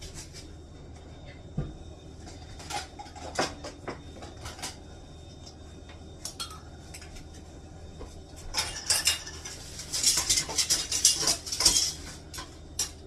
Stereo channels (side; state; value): both; identical; correlation 1.00